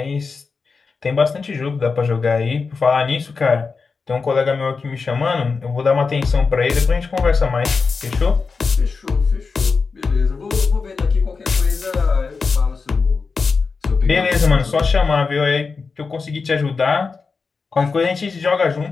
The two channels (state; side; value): quieter; right; 4.7 dB